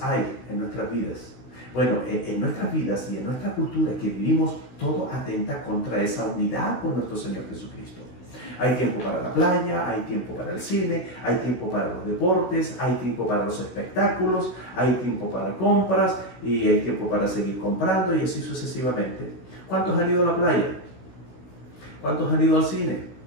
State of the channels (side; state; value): right; late; 16 ms